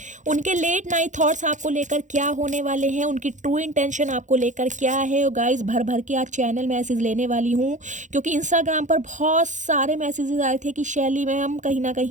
उनके लेट नाइट थॉट्स आपको लेकर क्या होने वाले हैं, उनकी ट्रू इंटेंशन आपको लेकर क्या है। और गाइस भर भर के आज चैनल मैसेज लेने वाली हूँ, क्योंकि इंस्टाग्राम पर बहुत सारे मैसेजेस आए थे कि शैली मैम कहीं ना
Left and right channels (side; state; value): left; late; 0.36 ms